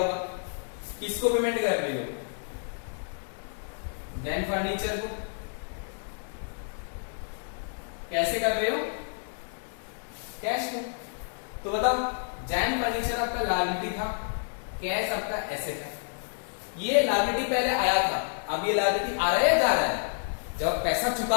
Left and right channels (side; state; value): right; silent; digital silence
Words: किसको पेमेंट कर रहे हो, जैन फर्नीचर को। कैसे कर रहे हो, कैश में। तो बताओ जैन फर्नीचर आपका लायबिलिटी था, कैश आपका एसेट है। ये लायबिलिटी पहले आया था, अब ये लायबिलिटी आ रहा है या जा रहा है, जब पैसा